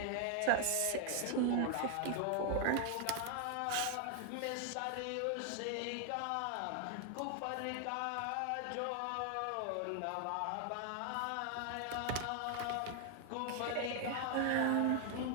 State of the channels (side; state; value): both; different; correlation 0.00